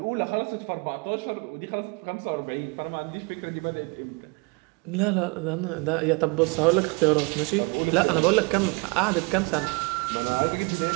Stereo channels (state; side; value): quieter; left; 29.8 dB